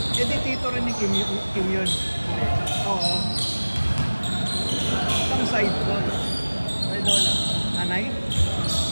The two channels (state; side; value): inverted; both; correlation -1.00